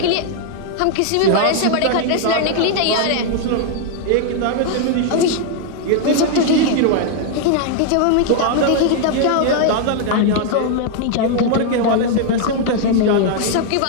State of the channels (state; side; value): different; both; correlation 0.00